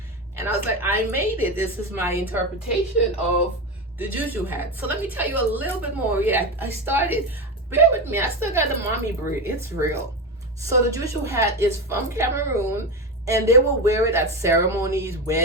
And I was like, I made it. This is my interpretation of the Juju Hat. So let me tell you a little bit more. Yeah, I started. Bear with me. I still got the mommy braid. It's real. So the Juju Hat is from Cameroon, and they will wear it at ceremonies,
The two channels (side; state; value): both; normal; correlation 0.18